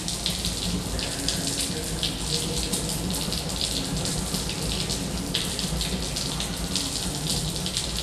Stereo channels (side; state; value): both; identical; correlation 1.00